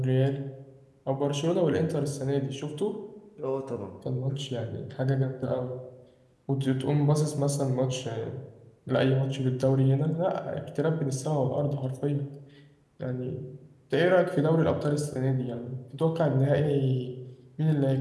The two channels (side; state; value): both; identical; correlation 1.00